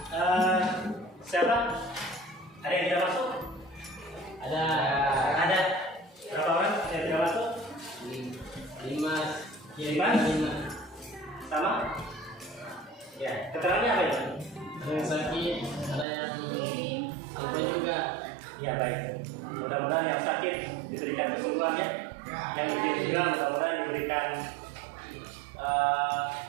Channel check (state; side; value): drops out; left; at 16.1 s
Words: siapa? Ada yang tidak masuk? Ada Ada. Berapa orang yang tidak masuk? 5. Sama? Ya, keterangannya apa itu? Ada yang sakit, ada yang lupa juga. Ya, baik. Mudah-mudahan yang sakit diberikan kesembuhan ya. Yang ujian juga mudah-mudahan diberikan